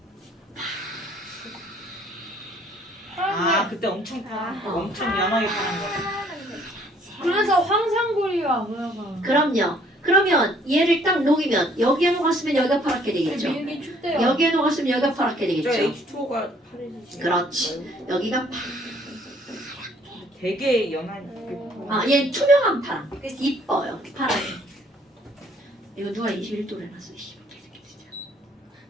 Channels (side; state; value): both; normal; correlation 0.61